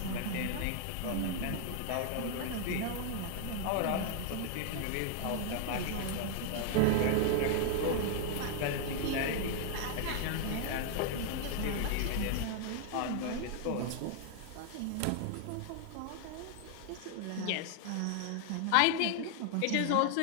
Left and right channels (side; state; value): both; different; correlation 0.00